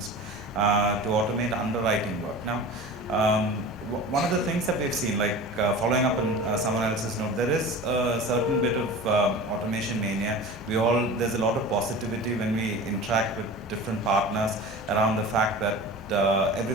to automate underwriting work. Now, one of the things that we've seen, like following up on someone else's note, there is a certain bit of automation mania. There's a lot of positivity when we interact with different partners around the fact that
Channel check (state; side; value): normal; both; correlation 0.35